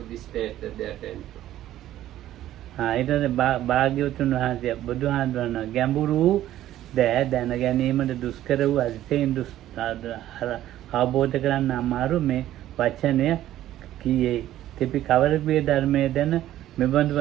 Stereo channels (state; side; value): quieter; left; 13.2 dB